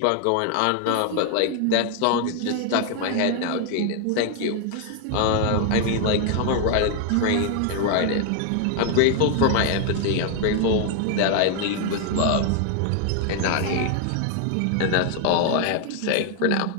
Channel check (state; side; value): different; both; correlation 0.00